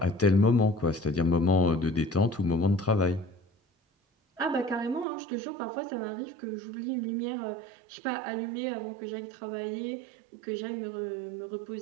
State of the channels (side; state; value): left; drops out; at 5.1 s